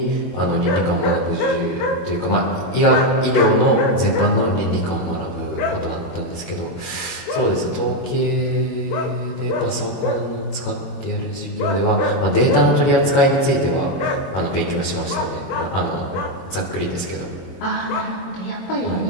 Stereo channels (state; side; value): late; right; 21 ms